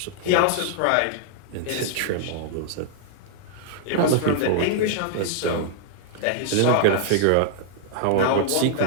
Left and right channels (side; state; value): both; different; correlation -0.01